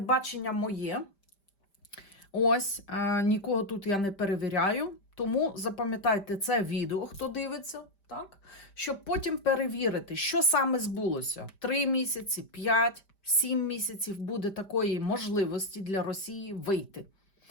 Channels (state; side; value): late; right; 5.1 ms